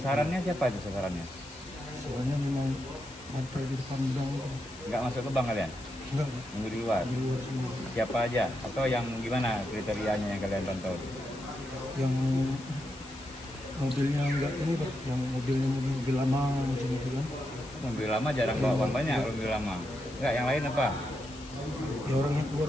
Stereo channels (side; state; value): left; noise; hiss, 18 dB below the sound